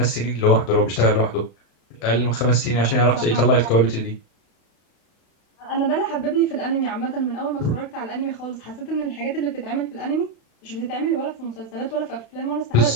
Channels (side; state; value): right; late; 36 ms